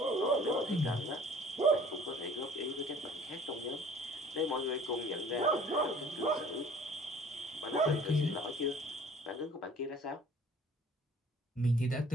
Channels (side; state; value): both; normal; correlation 0.51